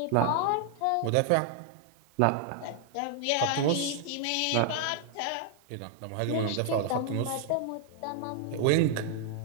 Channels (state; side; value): different; both; correlation 0.00